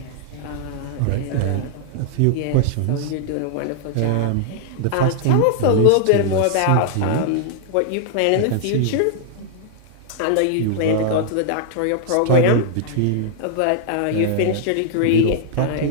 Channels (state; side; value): different; both; correlation -0.01